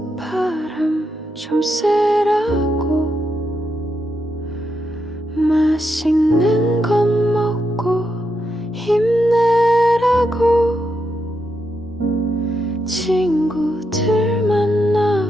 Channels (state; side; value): normal; both; correlation 0.83